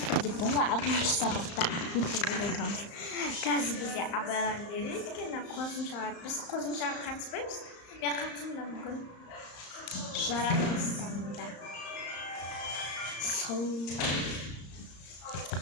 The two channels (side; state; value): right; late; 35 ms